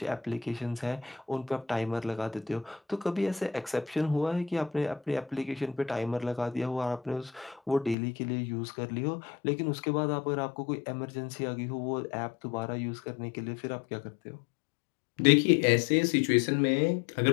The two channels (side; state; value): right; drops out; at 8.0 s